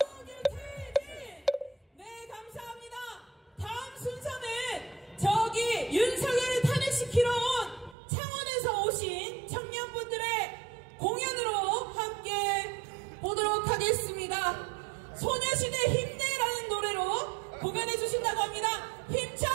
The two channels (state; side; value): drops out; left; at 8.0 s